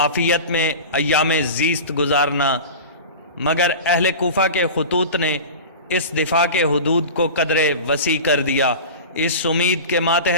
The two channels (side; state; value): both; inverted; correlation -0.31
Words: میں ایام زیست گزارنا، مگر اہل کوفہ کے خطوط نے اس دفاع کے حدود کو قدرے وسیع کر دیا، اس امید کے